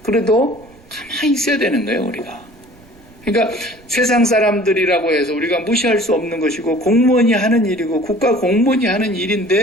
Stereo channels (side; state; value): right; noise; rumble, 26 dB below the sound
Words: 그래도 가만히 있어야 되는 거예요, 우리가. 그러니까 세상 사람들이라고 해서 우리가 무시할 수 없는 것이고 공무원이 하는 일이고 국가 공무원이 하는